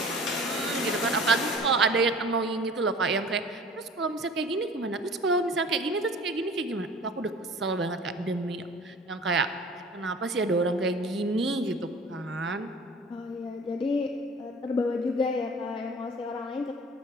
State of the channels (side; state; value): both; normal; correlation 0.43